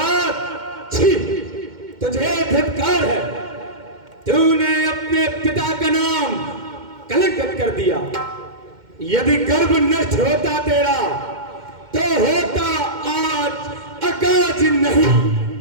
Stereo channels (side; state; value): left; late; 2.1 ms